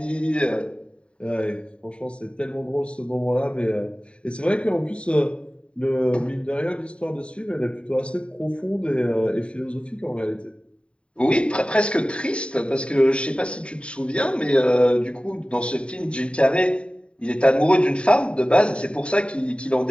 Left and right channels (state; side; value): late; right; 0.057 ms